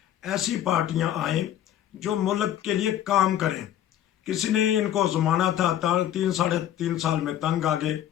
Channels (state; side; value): quieter; right; 11.5 dB